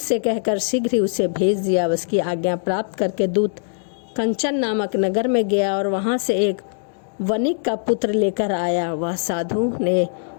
कहकर शीघ्र ही उसे भेज दिया। उसकी आज्ञा प्राप्त करके दूत कंचन नामक नगर में गया और वहां से एक वणिक का पुत्र लेकर आया। वह साधु ने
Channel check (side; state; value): right; silent; digital silence